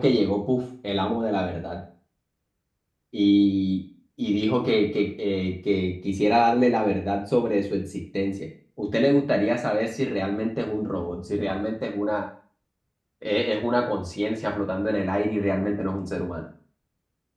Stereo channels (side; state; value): both; identical; correlation 1.00